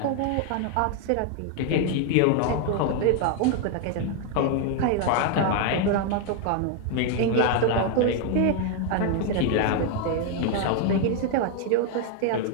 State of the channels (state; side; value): different; both; correlation 0.00